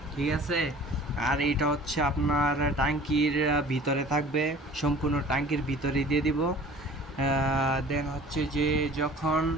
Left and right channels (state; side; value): normal; both; correlation 0.46